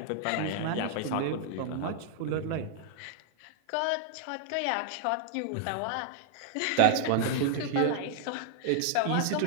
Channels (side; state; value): both; different; correlation -0.01